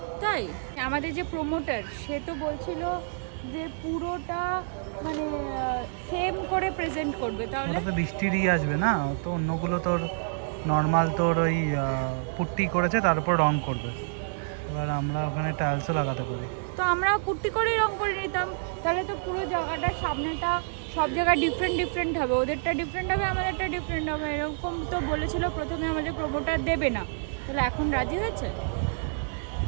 তাই আমাদের যে প্রমোটার সে তো বলছিল যে পুরোটা মানে সেম করে প্রেজেন্ট করবে, তাহলে ওটা তো বৃষ্টিরই আসবে না, তো অন্যগুলো তোর নর্মাল তোর ওই পুট্টি করেছে তার উপর রং করবে। এবার আমরা ওখানে টাইলসও লাগাতে পারি। তো আমরা পুট্টি করেই রং করে নিতাম, তাহলে তো পুরো জায়গাটার সামনেটা সব জায়গায় ডিফারেন্ট ডিফারেন্ট হবে, ওদেরটা ডিফারেন্ট হবে আমাদেরটা ডিফারেন্ট হবে, এরকম তো বলেছিল প্রথমে আমাদের প্রমোটার দেবে না, তাহলে এখন রাজি হয়েছে।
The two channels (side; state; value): left; silent; digital silence